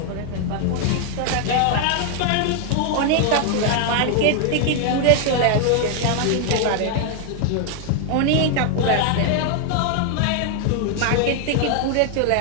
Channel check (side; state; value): both; different; correlation 0.00